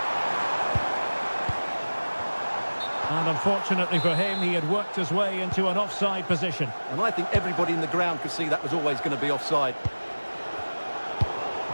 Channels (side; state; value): both; inverted; correlation -1.00